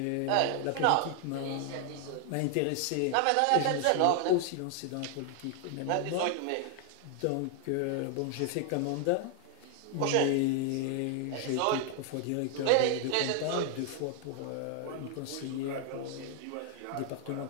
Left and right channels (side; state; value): both; different; correlation 0.00